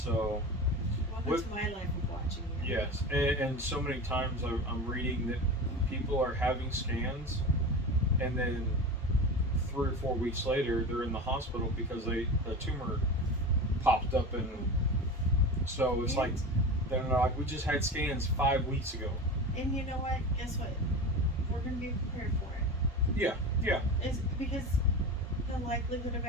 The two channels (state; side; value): normal; both; correlation 0.28